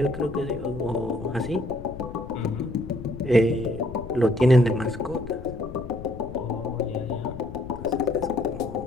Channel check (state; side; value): noise; left; rumble, 12 dB below the sound